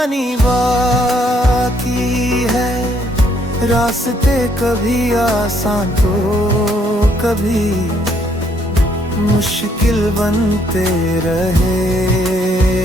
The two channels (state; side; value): normal; both; correlation 0.68